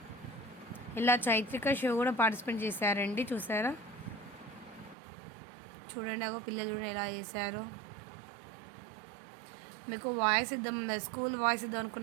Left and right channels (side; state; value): left; drops out; at 5.0 s